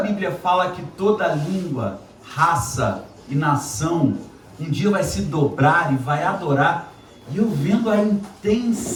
fala que toda língua, raça e nação um dia vai se dobrar e vai adorar, e eu vendo a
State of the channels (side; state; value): both; identical; correlation 1.00